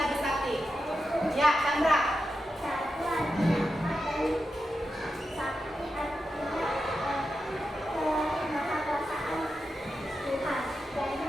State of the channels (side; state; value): both; normal; correlation 0.89